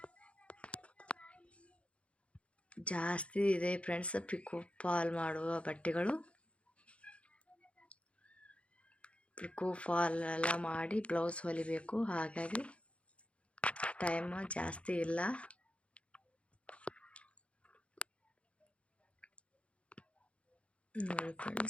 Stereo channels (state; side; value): late; right; 0.061 ms